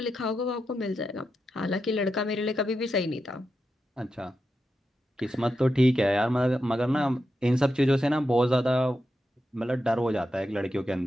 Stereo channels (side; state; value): both; normal; correlation 0.87